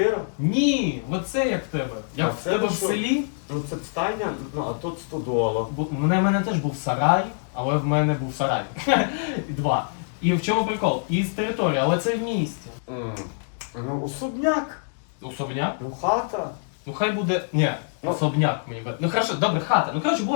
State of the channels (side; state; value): right; silent; digital silence